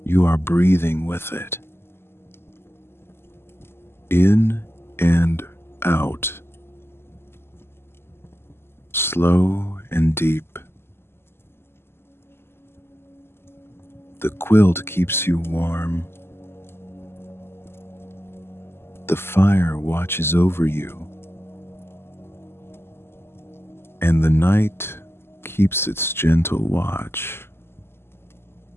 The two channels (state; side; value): late; right; 0.12 ms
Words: You are breathing with it. In and out. Slow and deep. The quilt keeps you warm. The fire watches over you. And the night keeps its gentle watch.